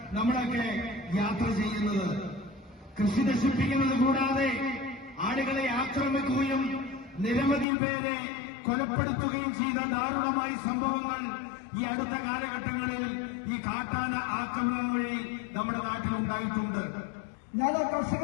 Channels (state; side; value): drops out; right; at 7.7 s